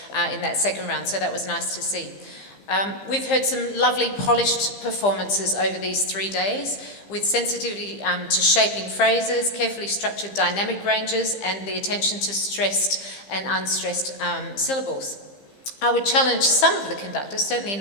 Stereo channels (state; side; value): late; right; 15 ms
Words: in that second round, so that was nice to see. We've heard some lovely polished performances over these 3 days, with sensitivity to shaping phrases, carefully structured dynamic ranges, and the attention to stressed and unstressed syllables. I would challenge some of the conductors, certainly